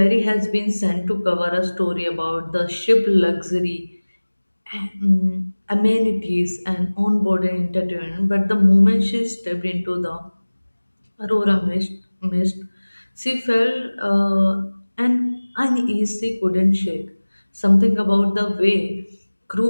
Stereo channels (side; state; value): both; inverted; correlation -1.00